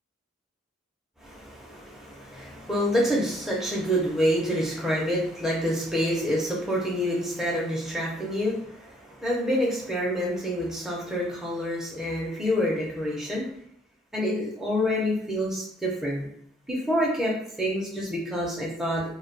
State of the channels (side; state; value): both; normal; correlation 0.64